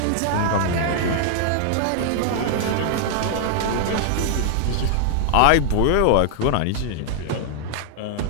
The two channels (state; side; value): different; both; correlation -0.01